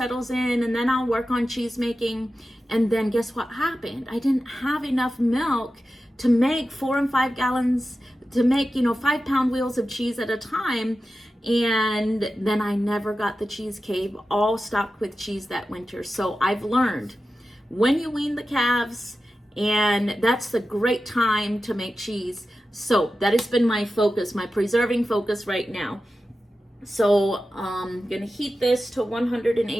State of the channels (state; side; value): normal; both; correlation 0.93